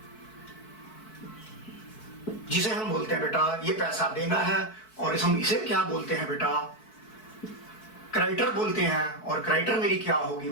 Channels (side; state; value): right; late; 4.6 ms